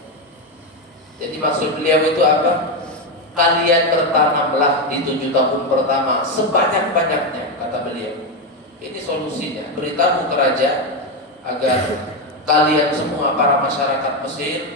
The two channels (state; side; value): normal; both; correlation 0.10